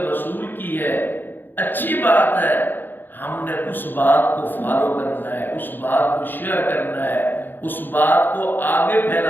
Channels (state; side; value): late; right; 0.093 ms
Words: رسول کی ہے، اچھی بات ہے، ہم نے اس بات کو فالو کرنا ہے، اس بات کو شیئر کرنا ہے، اس بات کو آگے